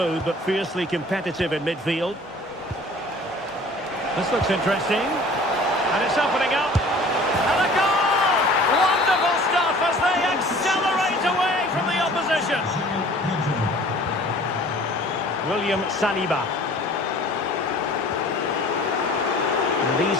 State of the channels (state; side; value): normal; both; correlation 0.48